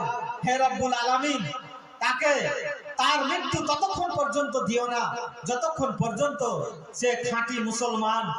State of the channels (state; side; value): identical; both; correlation 1.00